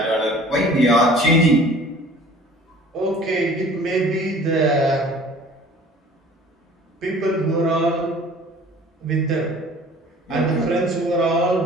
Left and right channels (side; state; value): both; normal; correlation 0.49